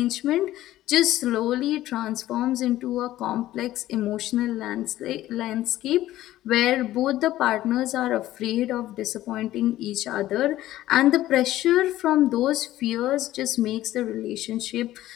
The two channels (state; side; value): quieter; right; 14.7 dB